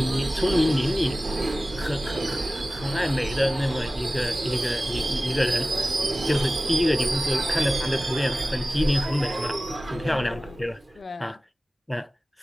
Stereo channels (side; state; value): both; normal; correlation 0.96